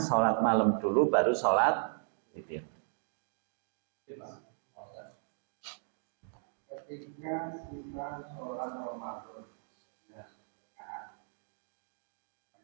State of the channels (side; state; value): left; silent; digital silence